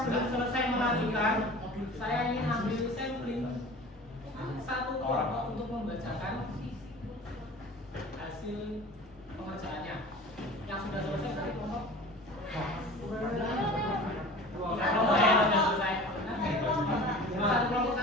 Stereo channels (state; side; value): normal; both; correlation 0.40